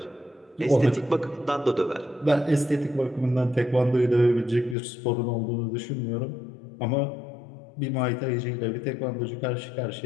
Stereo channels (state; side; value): drops out; right; at 4.8 s